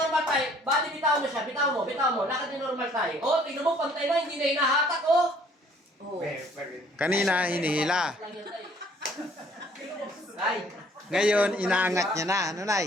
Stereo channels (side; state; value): both; normal; correlation 0.59